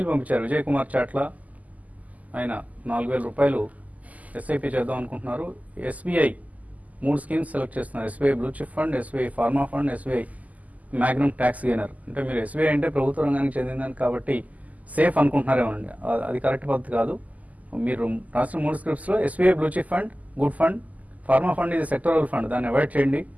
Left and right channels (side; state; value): left; late; 0.076 ms